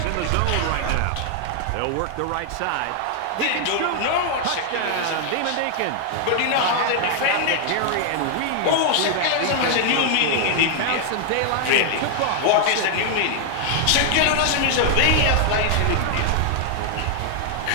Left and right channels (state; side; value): different; both; correlation 0.00